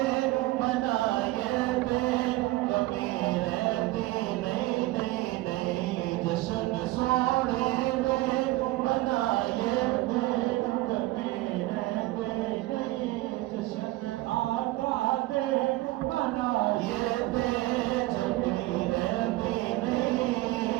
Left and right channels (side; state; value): left; quieter; 18.5 dB